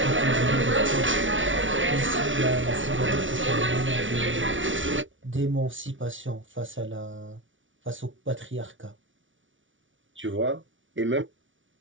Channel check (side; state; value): left; late; 0.56 ms